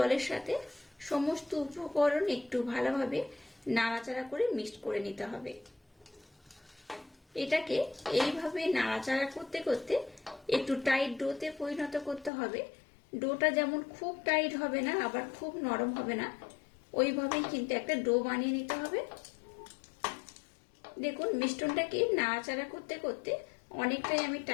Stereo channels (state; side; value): drops out; right; at 12.3 s